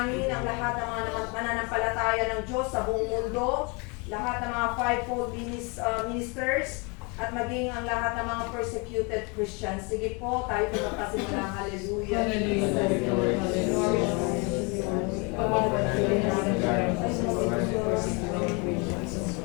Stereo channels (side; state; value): right; quieter; 31.1 dB